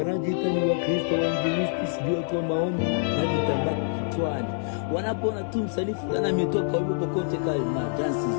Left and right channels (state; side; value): silent; right; digital silence